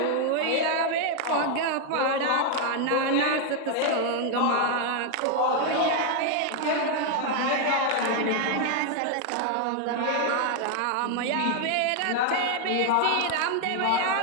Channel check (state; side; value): different; both; correlation 0.01